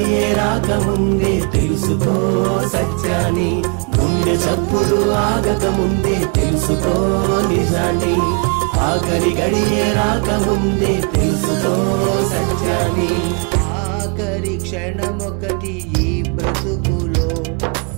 రాకముందే తెలుసుకో సత్యాన్ని. గుండె చప్పుడు ఆగకముందే తెలుసుకో నిజాన్ని, ఆఖరి గడియే రాకముందే తెలుసుకో సత్యాన్ని. ఆఖరి క్షణమొకటి ఈ బ్రతుకులో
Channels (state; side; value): quieter; left; 36.6 dB